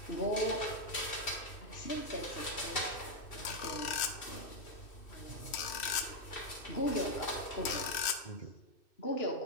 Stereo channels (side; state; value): right; late; 2.6 ms